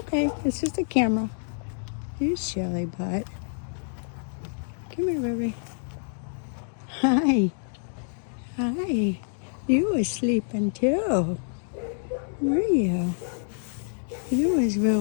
It's just a camera. You silly butt. Come here, baby. Hi. Hi. You was sleeping, too. Were you? You was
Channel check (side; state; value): right; silent; digital silence